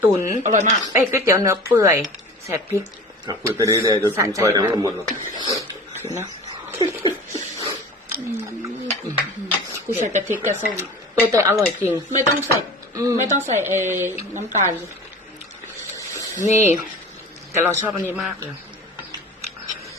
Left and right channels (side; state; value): both; normal; correlation 0.38